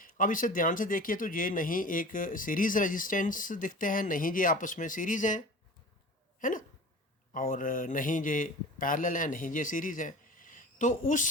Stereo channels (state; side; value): normal; both; correlation 0.38